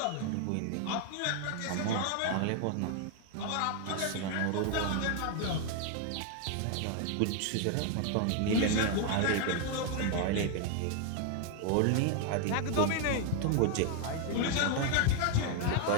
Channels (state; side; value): different; both; correlation 0.00